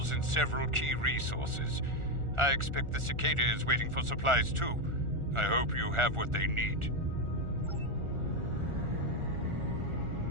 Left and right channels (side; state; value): left; late; 1.4 ms